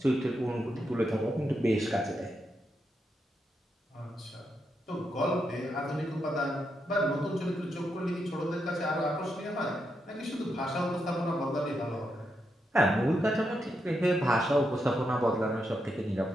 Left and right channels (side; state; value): both; normal; correlation 0.83